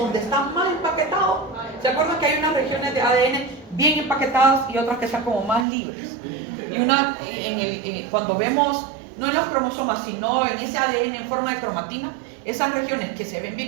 está más empaquetado, ¿se acuerdan que hay unas regiones de ADN bien empaquetadas y otras que están como más libres? Y cuando vemos, no en los cromosomas, sino en ese ADN en forma de cromatina, esas regiones que se ven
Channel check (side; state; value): left; drops out; at 5.7 s